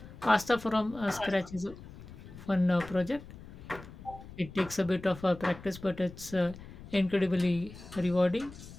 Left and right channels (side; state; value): left; noise; rumble, 16 dB below the sound